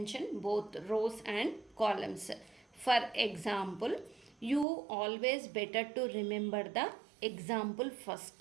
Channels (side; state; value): left; drops out; at 4.7 s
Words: both rows and columns. For example, you always better to remember the example